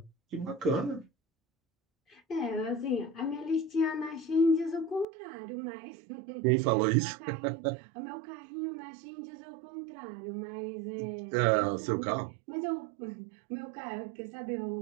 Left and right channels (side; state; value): left; drops out; at 5.1 s